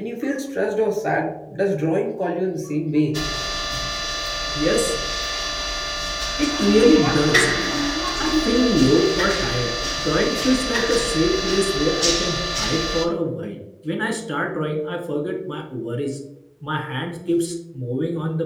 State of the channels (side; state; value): both; identical; correlation 1.00